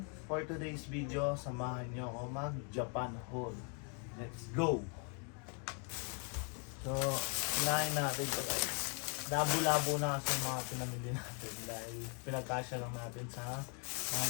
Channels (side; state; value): right; quieter; 38.5 dB